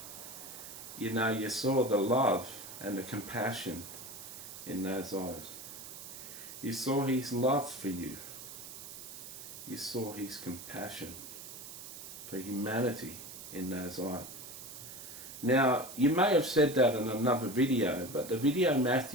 you know, you saw the love and the compassion in those eyes. You saw his love for you. You saw his compassion for humanity in those eyes. Now, you may have said that in another video, but the video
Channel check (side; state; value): right; noise; hiss, 12 dB below the sound